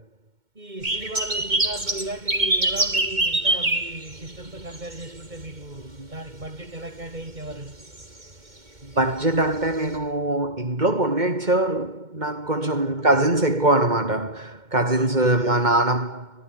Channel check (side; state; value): left; late; 2.2 ms